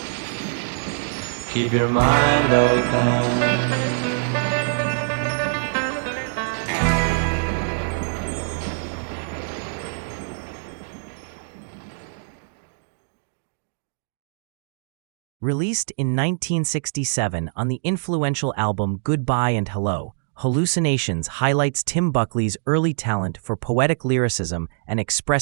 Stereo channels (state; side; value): silent; left; digital silence